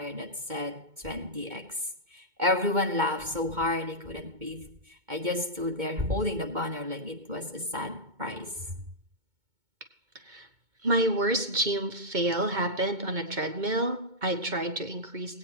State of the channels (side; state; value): left; late; 2.2 ms